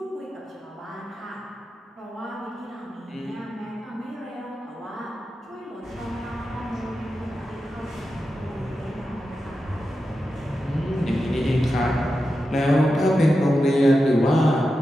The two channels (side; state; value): both; normal; correlation 0.90